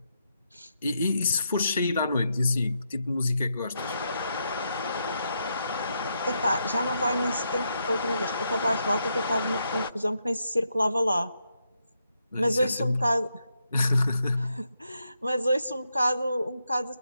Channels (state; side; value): inverted; both; correlation -0.81